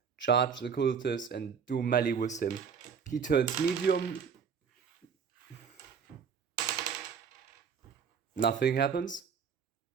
charge the cultist and do melee with him. He turns medium. Nothing happens.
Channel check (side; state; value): left; quieter; 6.6 dB